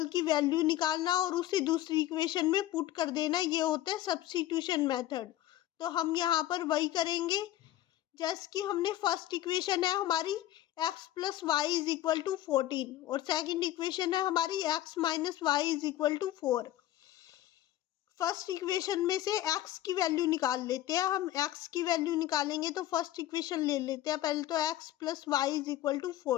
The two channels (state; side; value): quieter; right; 13.8 dB